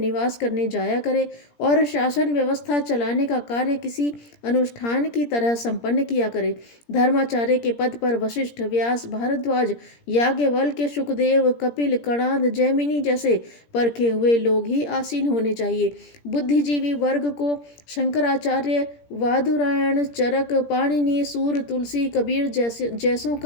करने जाया करे और शासन व्यवस्था चलाने का कार्य किसी अनुष्ठान की तरह संपन्न किया करे। धर्माचार्य के पद पर वशिष्ठ, व्यास, भारद्वाज, याज्ञवल्क्य, सुखदेव, कपिल, कणाद, जैमिनी जैसे परखे हुए लोग ही आसीन होने चाहिए। बुद्धिजीवी वर्ग को शंकराचार्य, वादुरायण, चरक, पाणिनि, सूर, तुलसी, कबीर जैसों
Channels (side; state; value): right; late; 17 ms